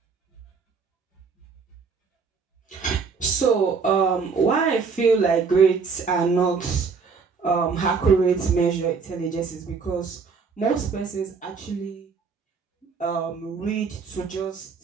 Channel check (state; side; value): quieter; left; 5.2 dB